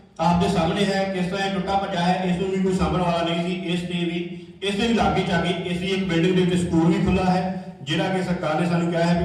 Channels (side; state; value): both; identical; correlation 1.00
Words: ਆਪ ਦੇ ਸਾਹਮਣੇ ਹੈ, ਕਿਸ ਤਰ੍ਹਾਂ ਇਹ ਟੁੱਟਾ ਭੱਜਾ ਹੈ। ਇਸ ਨੂੰ ਵੀ ਕੋਈ ਸਾਂਭਣ ਵਾਲਾ ਨਹੀਂ ਸੀ। ਇਸ ਦੇ ਵੀ ਲਾਗੇ ਚਾਗੇ ਇਸ ਦੀ ਇੱਕ ਬਿਲਡਿੰਗ ਦੇ ਵਿੱਚ ਸਕੂਲ ਵੀ ਖੁੱਲਾ ਹੈ, ਜਿਹੜਾ ਕਿ ਸਰਕਾਰ ਨੇ ਸਾਨੂੰ ਕਿਹਾ ਹੈ